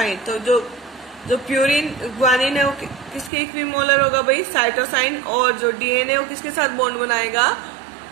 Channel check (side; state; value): left; drops out; at 3.3 s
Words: तो जो प्यूरिन ग्वानिन है वो किसके इक्विमोलर होगा भाई, साइटोसाइन, और जो डीएनए वो किसके साथ बॉन्ड बनाएगा,